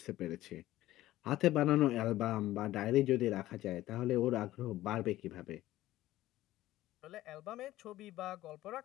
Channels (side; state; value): right; quieter; 15.4 dB